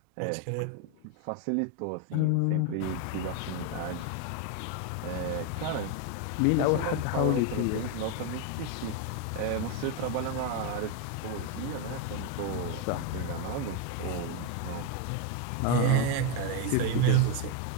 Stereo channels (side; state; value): both; different; correlation 0.02